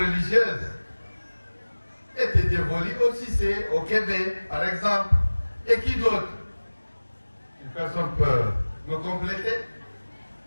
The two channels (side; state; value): both; inverted; correlation -1.00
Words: était dévolue au Cissé, au Québec, par exemple. Et qui d'autre? Une personne peut me compléter?